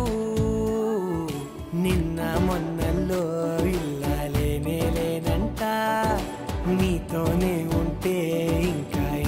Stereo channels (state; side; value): identical; both; correlation 1.00